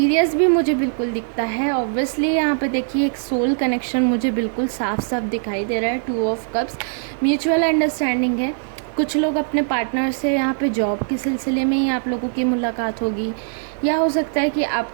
भी मुझे बिल्कुल दिखता है। ऑब्वियसली यहाँ पे देखिए एक सोल कनेक्शन मुझे बिल्कुल साफ साफ दिखाई दे रहा है। 2 ऑफ कप्स, म्यूचुअल अंडरस्टैंडिंग है। कुछ लोग अपने पार्टनर से यहाँ पे जॉब के सिलसिले में ही आप लोगों की मुलाकात होगी, या हो सकता है कि आप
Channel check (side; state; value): left; silent; 65 dB below the other